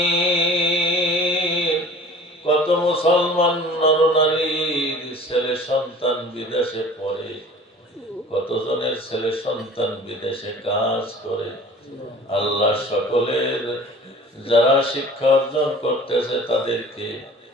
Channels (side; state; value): both; normal; correlation 0.45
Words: কত মুসলমান নরনারীর ছেলে সন্তান বিদেশে পড়ে কতজনের ছেলে সন্তান বিদেশে কাজ করে আল্লাহ সকলের যারা শিক্ষা অর্জন করতেছে তাদেরকে